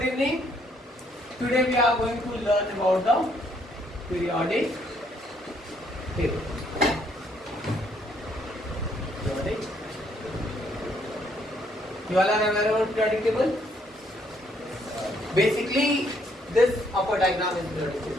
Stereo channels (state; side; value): normal; both; correlation 0.69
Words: evening. Today we are going to learn about the periodic table. Periodic. You all are aware about periodic table? Basically, this upper diagram is periodic